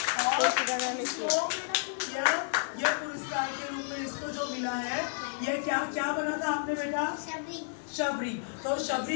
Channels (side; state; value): right; silent; digital silence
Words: और इसको यह पुरस्कार के रूप में इसको जो मिला है, यह क्या बना था आपने बेटा? शबरी। तो